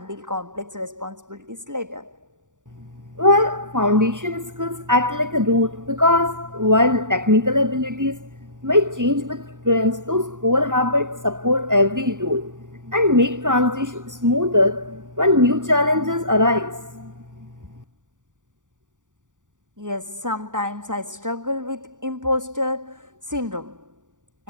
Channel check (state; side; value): late; left; 0.87 ms